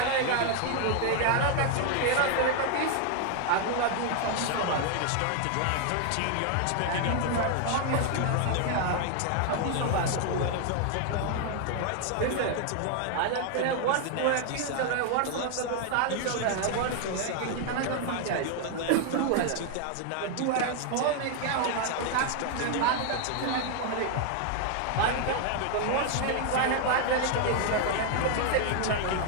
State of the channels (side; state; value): both; different; correlation 0.00